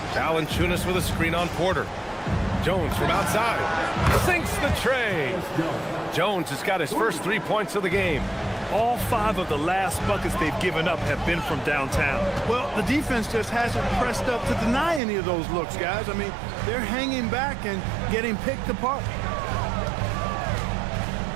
Valanciunas with a screen on Porter. Jones from outside. Sinks the tray. Jones has got his first 3 points of the game. All 5 of the last buckets they've given up have been from downtown. Well, the defense just hasn't pressed up to deny any of those looks, guys. I mean, they're hanging back and getting picked apart.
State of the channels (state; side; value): drops out; left; at 15.0 s